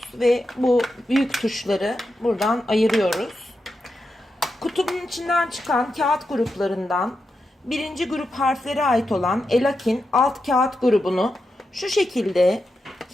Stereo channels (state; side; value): normal; both; correlation 0.87